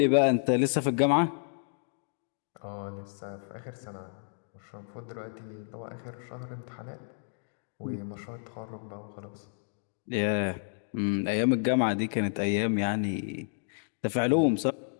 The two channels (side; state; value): right; silent; digital silence